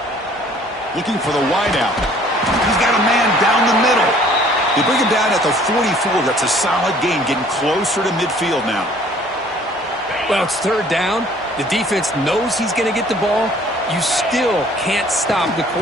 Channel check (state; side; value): normal; both; correlation 0.56